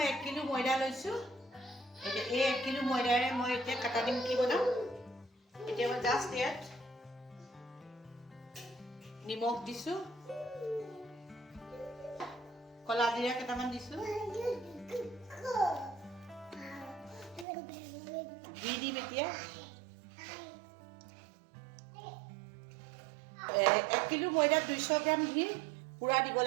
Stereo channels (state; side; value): drops out; left; at 17.4 s